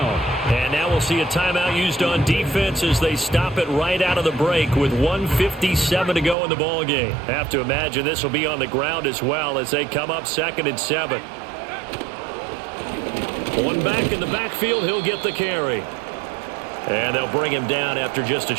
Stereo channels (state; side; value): drops out; left; at 6.4 s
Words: And now we'll see a timeout used on defense as they stop it right out of the break with 1:57 to go in the ballgame. Have to imagine this will be on the ground as well as they come up 2nd and 7. One back in the backfield, he'll get the carry. And they'll bring him down after just a